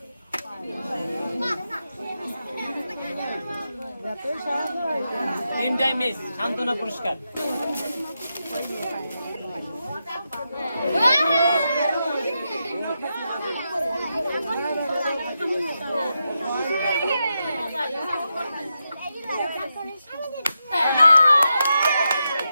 তিনটাই মিস, সান্ত্বনা পুরস্কার।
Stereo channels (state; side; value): inverted; both; correlation -0.86